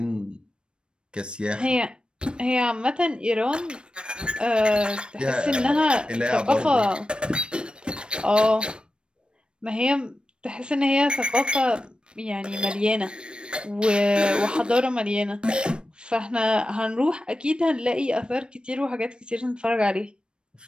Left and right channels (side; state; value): left; late; 0.055 ms